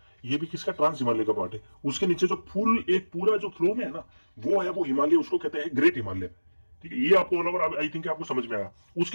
ये भी किसका, ट्रांस हिमालय का पार्ट है। उसके नीचे जो फुल एक पूरा जो फ्लो में है ना, वो है वो हिमालय, उसको कहते हैं ग्रेट हिमालय, ठीक है। ये आपको ऑल ओवर आई थिंक आपको समझ में आया।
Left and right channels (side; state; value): both; inverted; correlation -1.00